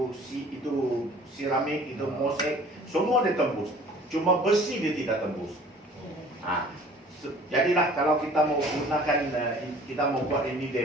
seramik, itu mosaik, semua dia tembus. Cuma besi dia tidak tembus. Jadilah kalau kita mau gunakan, kita mau buat ini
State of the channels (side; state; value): both; normal; correlation 0.50